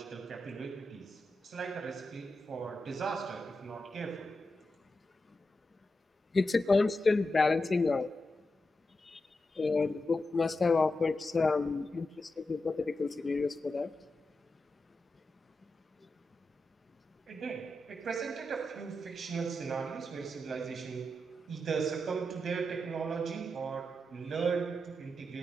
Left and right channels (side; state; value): both; normal; correlation 0.89